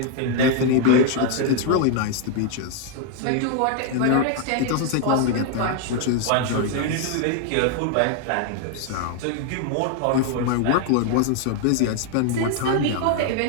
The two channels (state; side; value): different; both; correlation 0.00